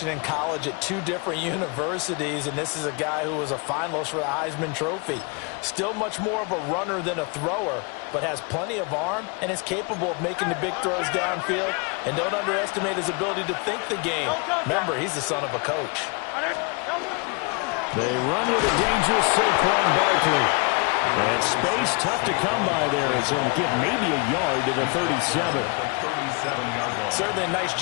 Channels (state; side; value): quieter; right; 31.3 dB